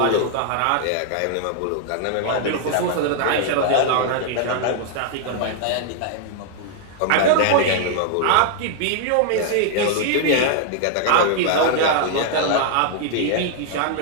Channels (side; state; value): both; different; correlation 0.00